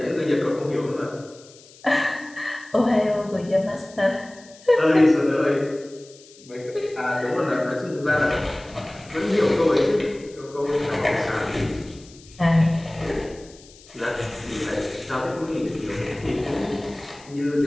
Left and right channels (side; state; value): left; noise; hiss, 23 dB below the sound